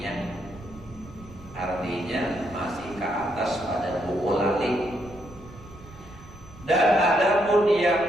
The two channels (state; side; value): noise; right; rumble, 19 dB below the sound